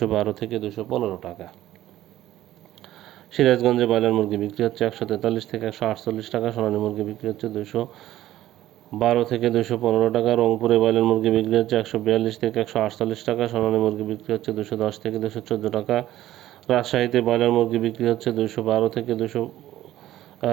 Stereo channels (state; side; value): quieter; left; 14.0 dB